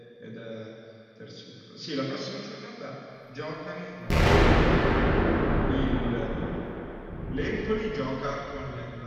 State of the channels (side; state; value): both; identical; correlation 1.00